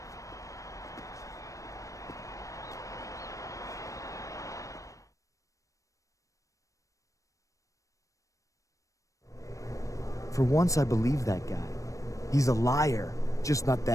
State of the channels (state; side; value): late; right; 0.16 ms